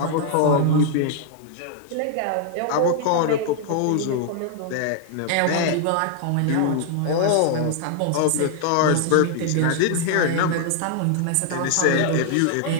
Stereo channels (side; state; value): both; different; correlation 0.00